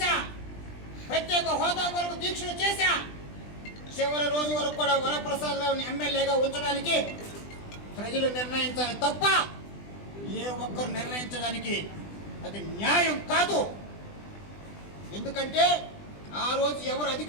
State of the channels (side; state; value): right; late; 20 ms